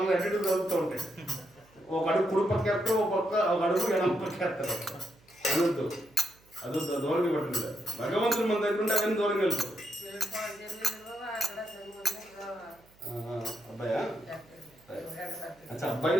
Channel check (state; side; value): noise; right; hum, 29 dB below the sound